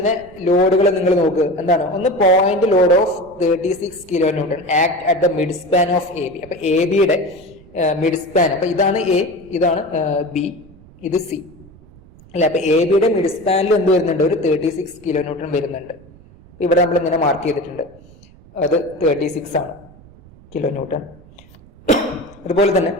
ലോഡുകൾ നിങ്ങൾ നോക്കുക, എന്താണ്, ഒന്ന് point load of 36 kN act at the mid span of AB. അപ്പൊ ABയുടെ മിഡ് സ്പാൻ, അപ്പൊ ഇതാണ് A, ഇതാണ് B, ഇത് C അല്ലെ. അപ്പൊ ABയുടെ മിഡ് സ്പാനിൽ എന്ത് വരുന്നുണ്ട്, ഒരു 36 kN വരുന്നുണ്ട്. ഇവിടെ നമ്മൾ ഇങ്ങനെ മാർക്ക് ചെയ്തിട്ടുണ്ട്, അത് 36 ആണ് kN. അതുപോലെ തന്നെ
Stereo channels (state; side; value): noise; right; rumble, 24 dB below the sound